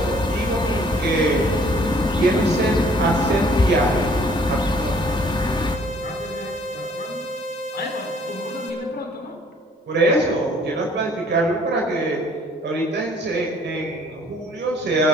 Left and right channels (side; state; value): both; normal; correlation 0.59